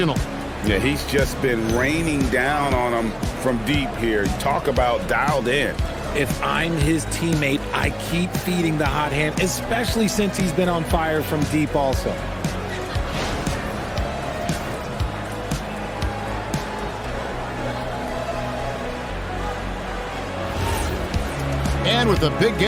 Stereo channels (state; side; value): identical; both; correlation 1.00